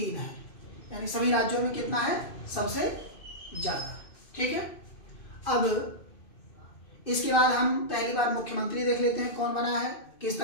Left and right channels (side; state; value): right; late; 2.5 ms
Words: है। यानी सभी राज्यों में कितना है, सबसे ज्यादा। ठीक है, अब इसके बाद हम पहली बार मुख्यमंत्री देख लेते हैं, कौन बना है, किस